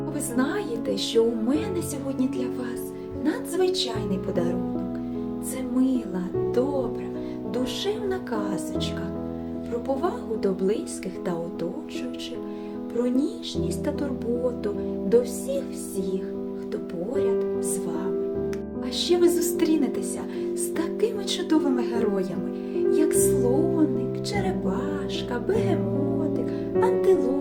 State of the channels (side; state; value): both; identical; correlation 1.00